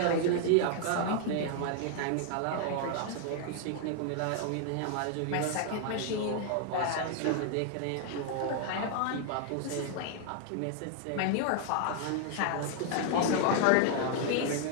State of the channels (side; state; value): both; different; correlation 0.00